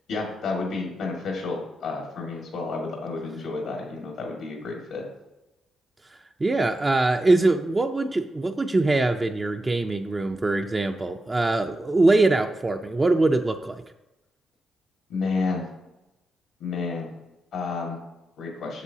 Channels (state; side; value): normal; both; correlation 0.90